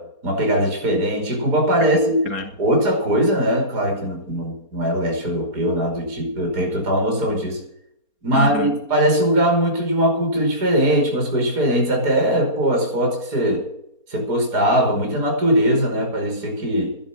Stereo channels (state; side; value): late; left; 4.3 ms